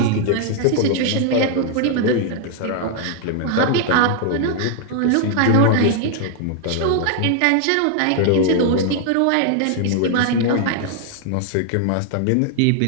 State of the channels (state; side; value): different; both; correlation 0.00